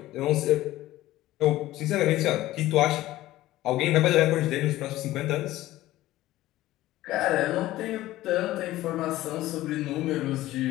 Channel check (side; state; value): right; quieter; 15.9 dB